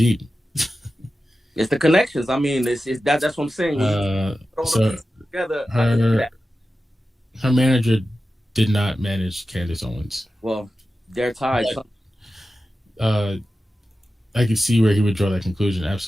It's the connections. I mean, that's what I'm saying. So together, her manager did not manage Candace Owens. Well, they're tied. I can see where he would draw that conclusion.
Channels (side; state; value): both; normal; correlation 0.93